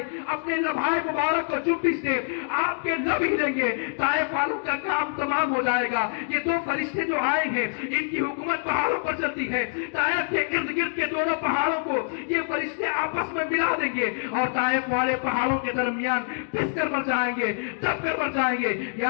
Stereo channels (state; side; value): silent; right; digital silence